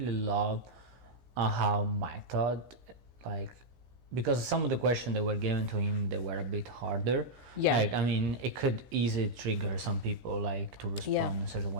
love how Mike Todd because some of the questions that were given to him, they were a bit harder. Like, I mean, it could easily trigger some people, like, to respond a certain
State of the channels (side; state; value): left; late; 15 ms